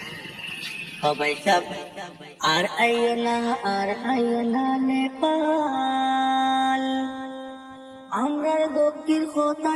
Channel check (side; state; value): both; identical; correlation 1.00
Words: সবাই সব আর আইও না নেপাল। আমরার দুঃখের কথা